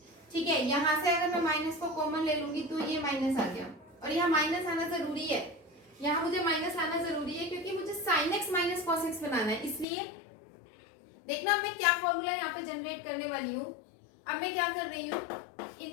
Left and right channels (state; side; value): drops out; right; at 9.9 s